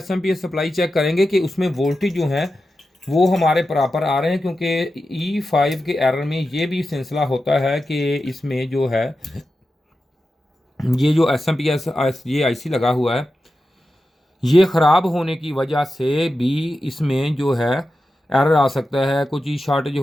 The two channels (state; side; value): normal; both; correlation 0.91